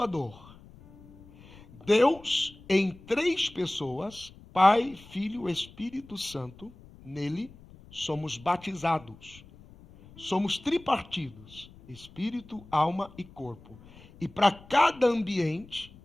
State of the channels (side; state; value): left; noise; rumble, 22 dB below the sound